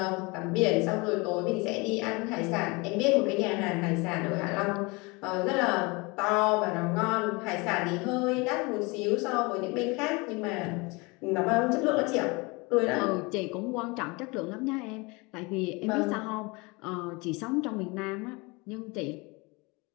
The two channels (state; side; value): quieter; right; 26.5 dB